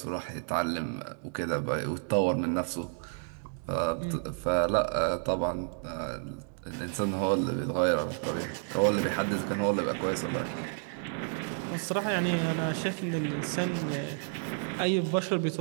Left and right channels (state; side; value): silent; left; 57 dB below the other